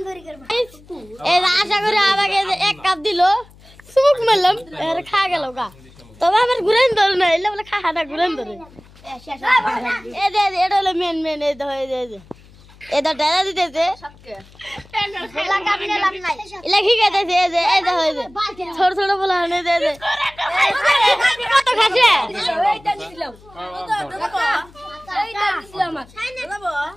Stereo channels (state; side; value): noise; left; hum, 25 dB below the sound